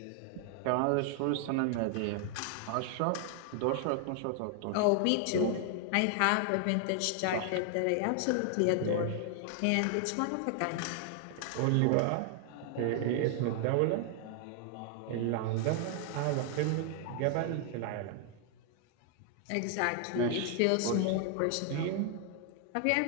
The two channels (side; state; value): both; different; correlation 0.00